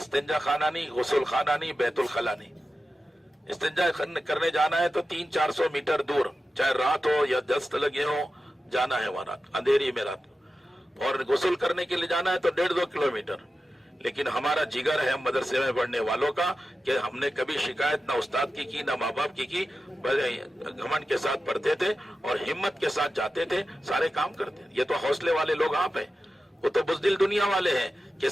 خانہ نہیں، غسل خانہ نہیں، بیت الخلا نہیں۔ استنجا کرنے جانا ہے تو 300-400 میٹر دور، چاہے رات ہو یا دست لگے ہو، جانا ہے وہاں اندھیری میں رات، اور غسل کرنے کے لیے جانا ہے تو 1.5-2 کلومیٹر۔ لیکن ہمارا جگر ہے مدرسے میں پڑھنے والوں کا کہ ہم نے کبھی شکایت نہ استاد کی نہ ماں باپ کی، گھمنڈ کے ساتھ پڑھتے تھے اور ہمت کے ساتھ جاتے تھے، سارے کام کرتے تھے۔ یہ تو حوصلے والے لوگ آپ ہیں، وہ تو بزدل دنیا والے ہیں کہ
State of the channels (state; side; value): normal; both; correlation 0.92